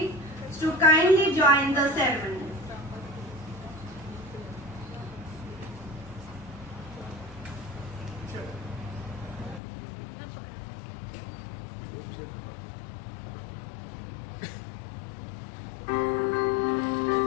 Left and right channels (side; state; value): right; drops out; at 9.6 s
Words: to kindly join the ceremony.